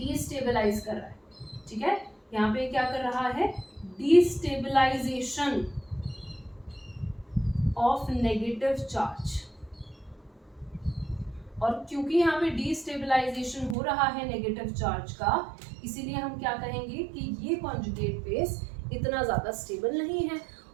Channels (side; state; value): left; drops out; at 13.8 s